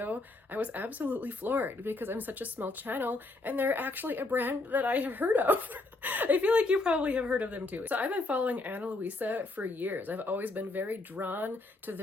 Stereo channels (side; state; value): right; quieter; 3.2 dB